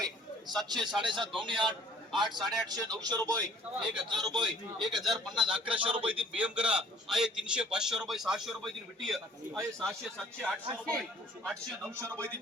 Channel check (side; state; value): both; normal; correlation 0.53